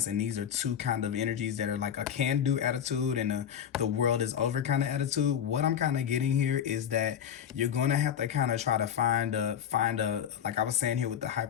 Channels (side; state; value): right; quieter; 9.0 dB